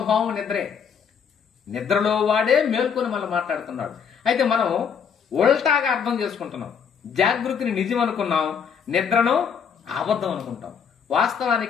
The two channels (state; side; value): quieter; right; 7.0 dB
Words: నిద్రే. నిద్రలో వాడే మేల్కొని మళ్ళీ మాట్లాడుతున్నాడు. అయితే మనం ఉల్టాగా అర్థం చేసుకుంటున్నాం. జాగృతిని నిజం అనుకున్నాం, నిద్రను అబద్ధం అనుకుంటాం.